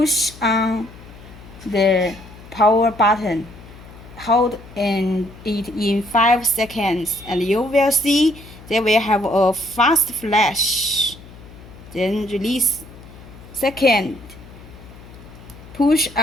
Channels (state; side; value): noise; left; hum, 19 dB below the sound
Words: on the power button. Hold it in 5 seconds and you will see they will have a fast flash. Then release. Second, push